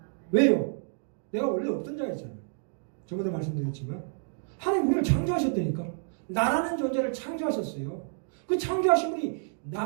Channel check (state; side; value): silent; left; digital silence